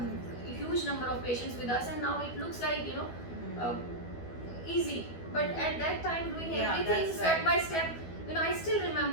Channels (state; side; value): late; right; 12 ms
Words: huge number of patients with us, and now it looks like, easy. But at that time, doing everything that's step right. by step, I still